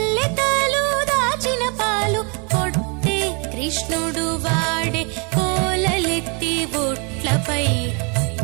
దాచిన పాలు కొట్టే కృష్ణుడు వాడే కోలలెత్తి బుట్లపై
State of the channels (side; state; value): left; quieter; 34.2 dB